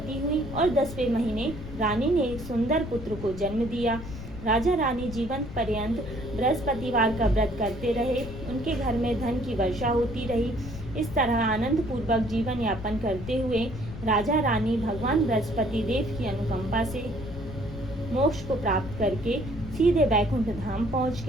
हुई और 10वें महीने रानी ने एक सुंदर पुत्र को जन्म दिया। राजा रानी जीवन पर्यंत बृहस्पतिवार का व्रत करते रहे। उनके घर में धन की वर्षा होती रही। इस तरह आनंद पूर्वक जीवन यापन करते हुए राजा रानी भगवान बृहस्पति देव की अनुकंपा से मोक्ष को प्राप्त करके सीधे बैकुंठ धाम पहुंच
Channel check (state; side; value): noise; left; rumble, 11 dB below the sound